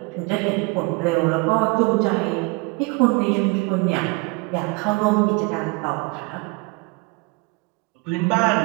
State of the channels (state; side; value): quieter; left; 27.0 dB